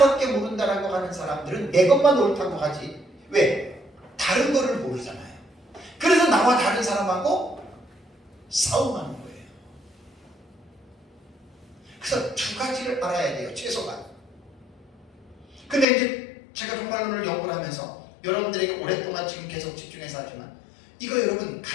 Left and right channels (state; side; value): drops out; right; at 15.9 s